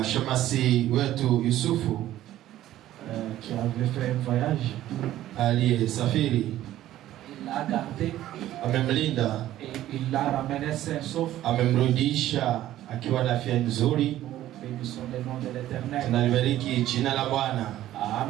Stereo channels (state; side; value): quieter; left; 13.6 dB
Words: shemasi wetu Yusufu Qui avait fait un voyage. aliyesafiri, Il l'a gardé amemlinda, et il l'a ramené sain sauf. amemrudisha akiwa na afya nzuri. Nous bénissons le nom de l'Éternel. Tunalibariki jina la Bwana.